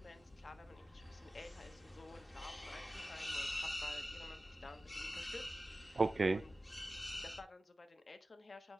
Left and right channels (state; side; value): normal; both; correlation 0.96